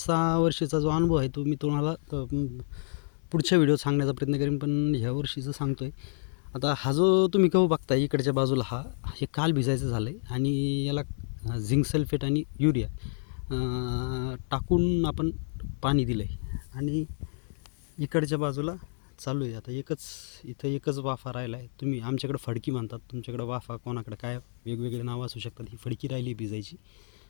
वर्षीचा जो अनुभव आहे तो मी तुम्हाला पुढच्या व्हिडिओत सांगण्याचा प्रयत्न करेन, पण ह्या वर्षीचं सांगतो आहे. आता हा जो तुम्ही गहू बघता इकडच्या बाजूला हे काल भिजायचं झालं आहे आणि याला झिंक सल्फेट आणि युरिया टाकून आपण पाणी दिलं आहे आणि इकडच्या बाजूला चालू आहे. आता इथं एकच वाफा राहिला आहे. तुम्ही आमच्याकडं फडकी म्हणतात, तुमच्याकडं वाफा, कोणाकडं काय वेगवेगळे नावं असू शकतात. ही फडकी राहिली भिजायची.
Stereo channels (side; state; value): right; silent; 58 dB below the other